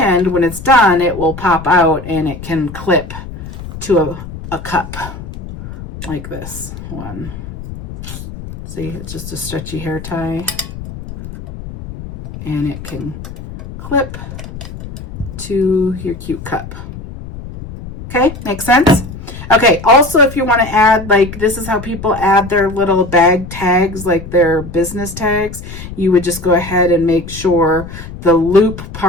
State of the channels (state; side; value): noise; left; rumble, 12 dB below the sound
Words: when it's done, it will pop out and it can clip to a cup like this one. See, it's just a stretchy hair tie, and it can clip to your cute cup. Okay, makes sense? Okay, also if you want to add, like, this is how people add their little bag tags, like their business tags. You would just go ahead and make sure the loop